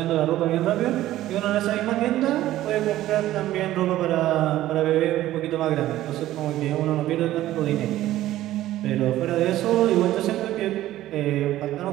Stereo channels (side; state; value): left; quieter; 14.5 dB